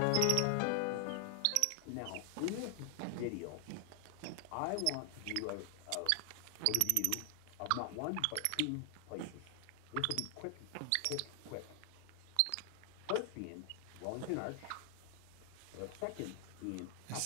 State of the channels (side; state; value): both; different; correlation 0.00